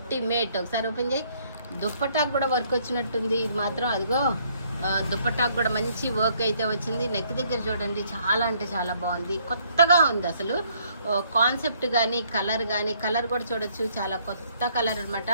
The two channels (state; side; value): inverted; both; correlation -0.66